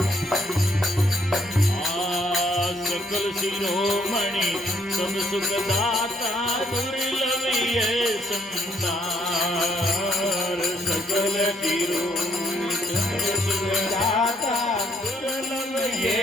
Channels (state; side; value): normal; both; correlation 0.69